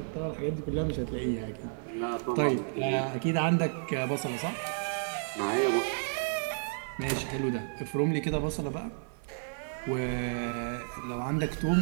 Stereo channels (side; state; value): left; silent; digital silence